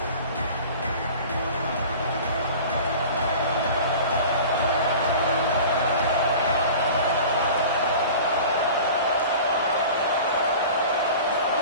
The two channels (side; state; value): both; inverted; correlation -0.40